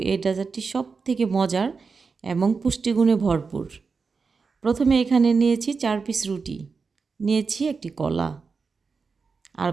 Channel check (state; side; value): quieter; left; 4.9 dB